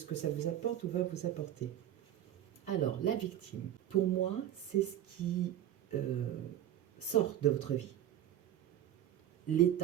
que ça vous apporte ou va vous apporter. Alors, la victime, pour moi, c'est ce qui euh, sort de votre vie.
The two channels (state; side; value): quieter; left; 11.6 dB